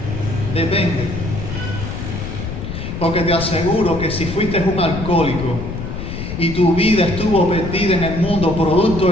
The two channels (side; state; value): left; noise; rumble, 6 dB below the sound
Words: Depende. Porque te aseguro que si fuiste un alcohólico y tu vida estuvo perdida en el mundo producto